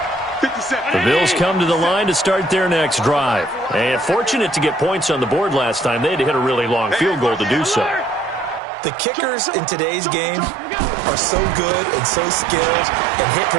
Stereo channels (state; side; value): drops out; left; at 8.6 s